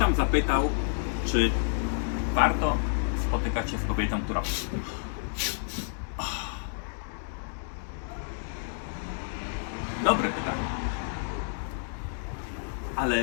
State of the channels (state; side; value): silent; right; digital silence